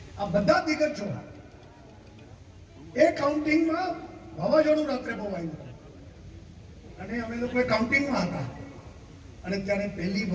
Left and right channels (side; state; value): both; identical; correlation 1.00